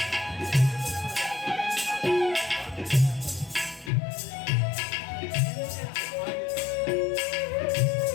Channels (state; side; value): drops out; right; at 3.9 s